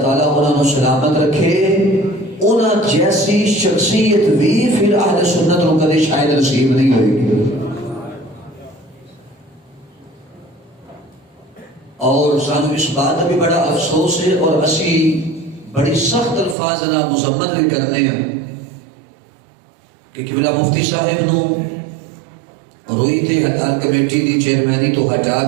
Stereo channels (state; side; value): drops out; left; at 16.6 s